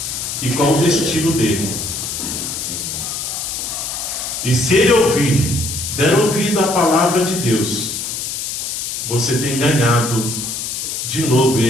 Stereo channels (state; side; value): noise; left; hiss, 4 dB below the sound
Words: e qual o destino dele. E se ele ouvir, der ouvido à palavra de Deus, você tem ganhado de novo